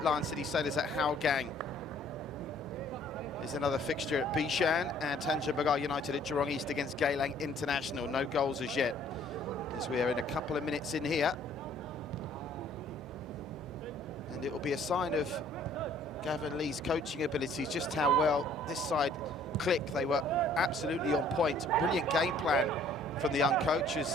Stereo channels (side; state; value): both; normal; correlation 0.58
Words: Lion City Sailors at Hougang is another fixture at Bishan, and Tanjung Pagar United at Jurong East against Geylang International. No goals as yet, as we are in a couple of minutes in here. And it will be a sign of Gavin Lee's coaching abilities, just how well this side click. They were absolutely on point. Brilliant game plan from the young coach